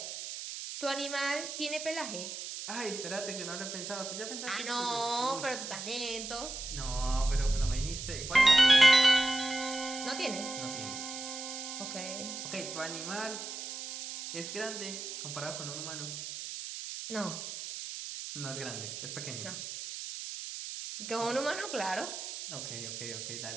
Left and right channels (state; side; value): noise; right; hiss, 7 dB below the sound